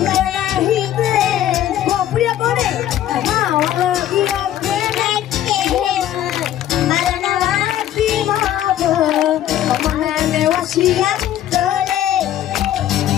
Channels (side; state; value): right; quieter; 11.9 dB